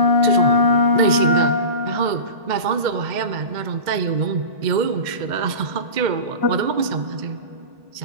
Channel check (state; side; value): late; left; 2.1 ms